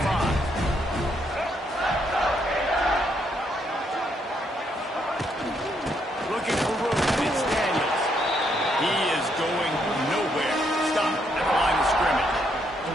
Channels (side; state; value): both; normal; correlation 0.74